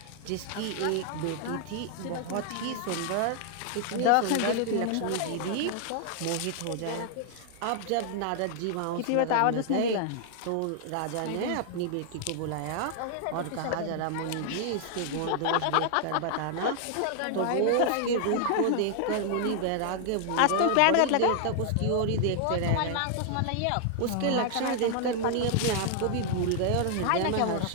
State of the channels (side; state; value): both; different; correlation 0.00